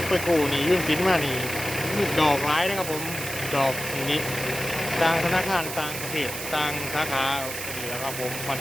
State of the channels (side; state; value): right; noise; hiss, 7 dB below the sound